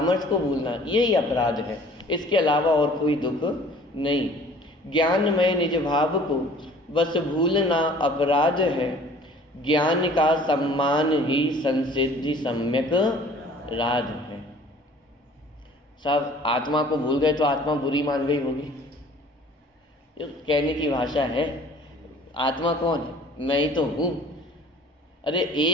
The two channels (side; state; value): both; normal; correlation 0.51